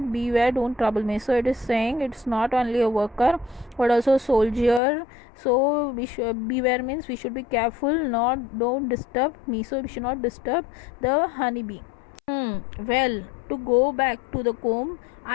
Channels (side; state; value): right; drops out; at 4.8 s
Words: don't trouble me. So it is saying it's not only a worker but also a soldier. So beware means we should be careful, not don't disturb me. So we should not disturb the honeybee. Well, to go back to the comb,